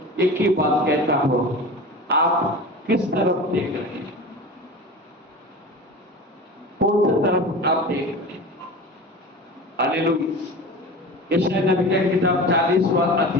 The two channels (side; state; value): both; normal; correlation 0.33